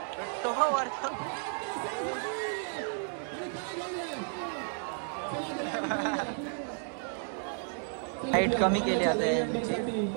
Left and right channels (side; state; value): left; silent; 56 dB below the other